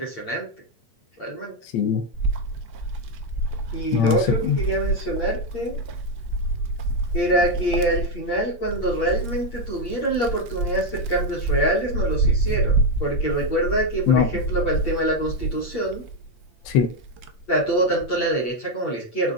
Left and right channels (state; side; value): late; right; 8.6 ms